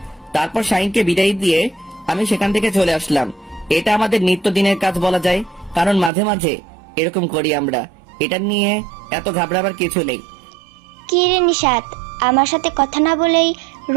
তারপর শাহিনকে বিদায় দিয়ে আমি সেখান থেকে চলে আসলাম। এটা আমাদের নিত্যদিনের কাজ বলা যায়, কারণ মাঝে মাঝে এরকম করি আমরা। এটা নিয়ে এত ঘাবড়াবার কিছু নেই। কি রে নিশাত, আমার সাথে কথা না বলেই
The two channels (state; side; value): drops out; left; at 6.1 s